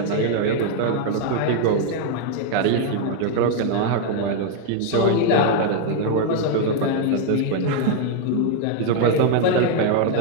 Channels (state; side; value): different; both; correlation 0.00